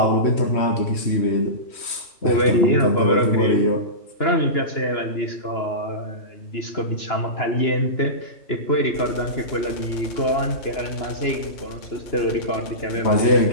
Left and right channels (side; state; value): right; late; 2.9 ms